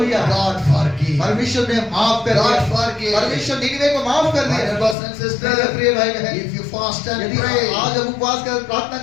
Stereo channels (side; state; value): right; drops out; at 5.0 s